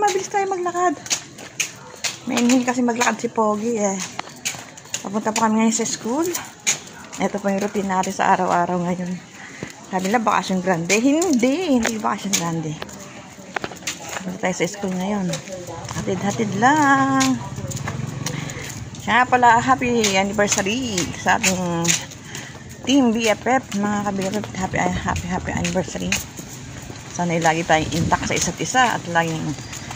tayo maglakad. Mainin kasi maglakad si pogi eh. Papunta po kami ngayon sa school. Eto po yung routine natin sa araw-araw ngayon. Sabi na bakasyon grande. Hindi bakasyon grande. Papunta tayo sa school ngayon. Hatid-hatid lang. Kaya pala, happy anniversary sa ating Team BFF, mga ka-BFF. Happy anniversary. Sana lagi tayong intact sa isa't isa at laging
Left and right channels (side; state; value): both; identical; correlation 1.00